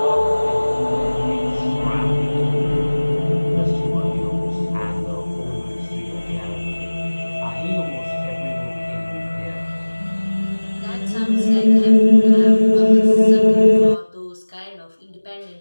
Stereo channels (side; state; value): both; inverted; correlation -1.00